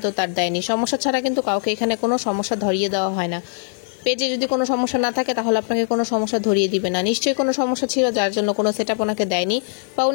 তার দেয়নি। সমস্যা ছাড়া কিন্তু কাউকে এখানে কোনো সমস্যা ধরিয়ে দেওয়া হয় না। পেজে যদি কোনো সমস্যা না থাকে, তাহলে আপনাকে কোনো সমস্যা ধরিয়ে দিবে না। নিশ্চয়ই কোনো সমস্যা ছিল, যার জন্য কোনো সেটআপ ওনাকে দেয়নি, বা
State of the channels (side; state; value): right; silent; digital silence